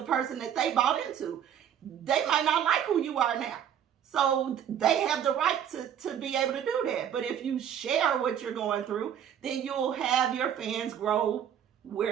person that they bought into. They might not like who you are now. So they have the right to be able to do that. But if you share what you're going through, then you'll have your fans grow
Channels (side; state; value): left; quieter; 9.3 dB